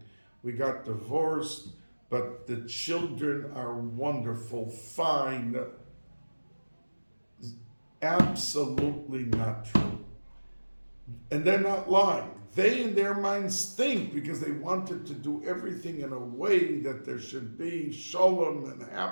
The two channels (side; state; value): both; inverted; correlation -1.00